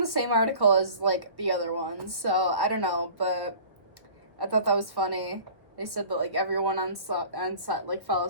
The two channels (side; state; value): left; late; 1.2 ms